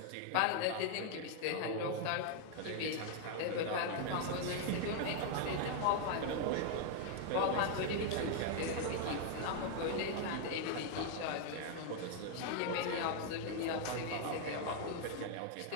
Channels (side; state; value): both; different; correlation 0.00